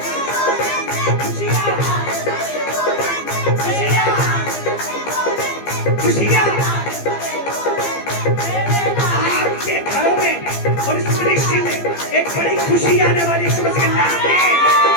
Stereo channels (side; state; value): right; late; 15 ms